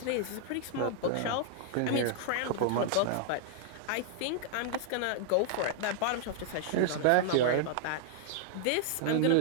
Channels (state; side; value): different; both; correlation -0.01